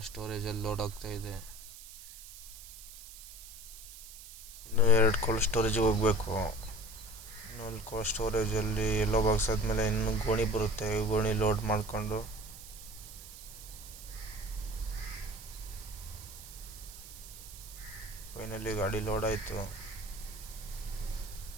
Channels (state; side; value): noise; right; hiss, 15 dB below the sound